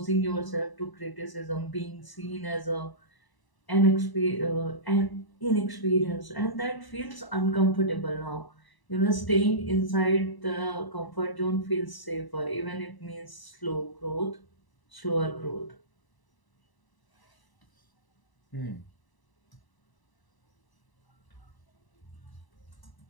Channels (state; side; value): late; right; 1.0 ms